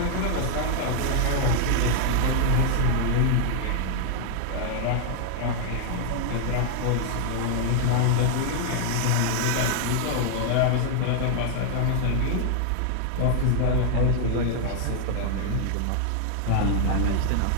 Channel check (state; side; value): different; both; correlation 0.00